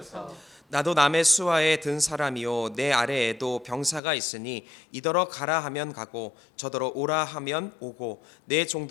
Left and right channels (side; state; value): right; drops out; at 4.0 s